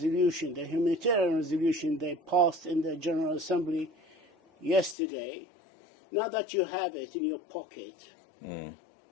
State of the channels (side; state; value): right; drops out; at 5.0 s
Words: the humanitarian resolution they passed in the General Assembly yesterday. Now that you have it in your pocket,